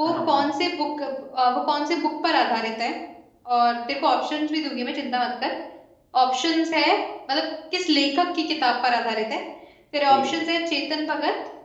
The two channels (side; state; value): both; identical; correlation 1.00